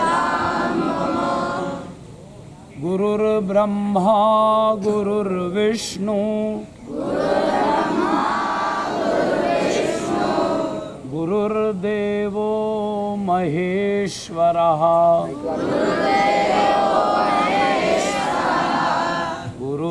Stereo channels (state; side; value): identical; both; correlation 1.00